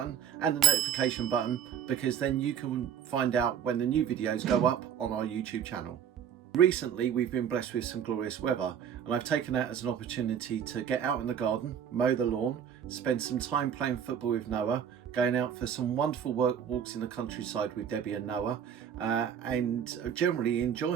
and the notification button, because then you can find out when the new videos go up on our YouTube channel. Recently, we've been blessed with some glorious weather, and I've taken that as an opportunity to get out in the garden, mow the lawn, spend some time playing football with Noah, going out for some wonderful walks in the countryside with Debbie and Noah, and generally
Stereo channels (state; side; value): quieter; left; 8.6 dB